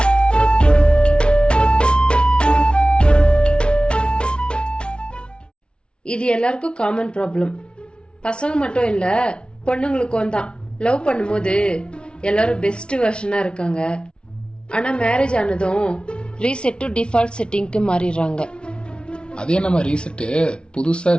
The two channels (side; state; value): right; late; 0.057 ms